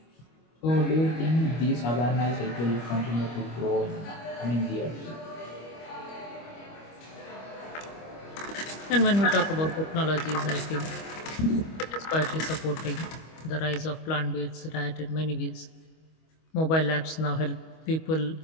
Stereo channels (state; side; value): late; right; 25 ms